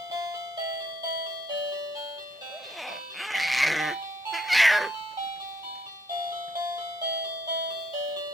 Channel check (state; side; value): normal; both; correlation 0.71